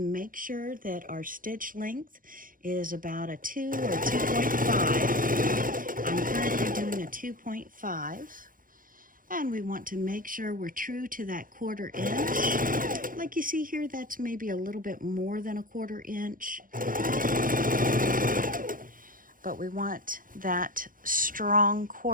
make sure that our stitch length is about a 2 or 2.5. I'm currently doing a 2.5. And we want to make sure we're true to that 1/4 inch. Like you see here, that's maybe a little bit more than a 1/4 inch. But we want that strong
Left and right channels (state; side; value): late; left; 0.40 ms